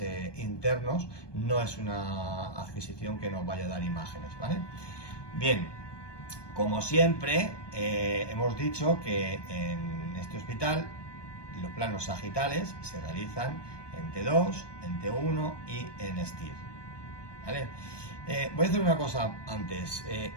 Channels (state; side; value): late; right; 1.2 ms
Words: internos. No es una adquisición que nos vaya a dar imágenes, ¿vale? Bien, como siempre hemos dicho que en este hospital los planos sagitales se realizan en T2, en T1 y en STIR, ¿vale? Voy a hacer una cosa antes.